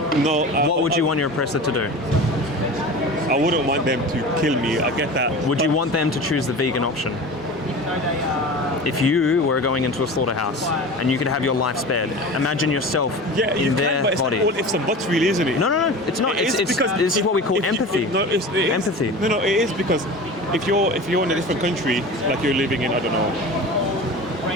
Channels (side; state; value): both; normal; correlation 0.34